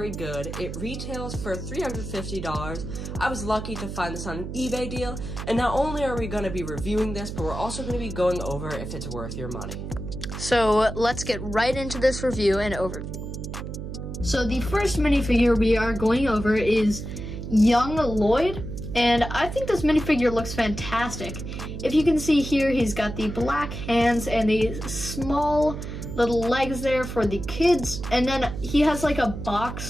good. It retails for $350. I was lucky to find this on an eBay deal. And not only are we going to be reviewing this, but we're also going to be going over if it's worth your money. So let's get right into this review and overview. So the first minifigure we are going over is Young Lloyd. And I think this minifigure looks fantastic. If you can see here, he's got the black hands and the small little legs there for the kids. And then he has like a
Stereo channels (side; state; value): right; noise; hum, 7 dB below the sound